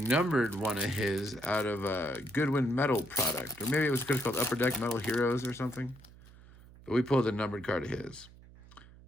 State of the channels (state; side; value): noise; right; hum, 22 dB below the sound